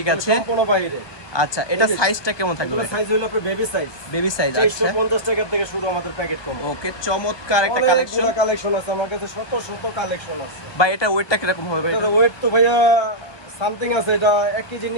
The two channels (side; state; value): right; late; 1.2 ms